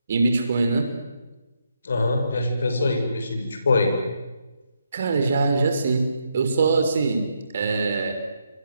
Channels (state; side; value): inverted; both; correlation -0.79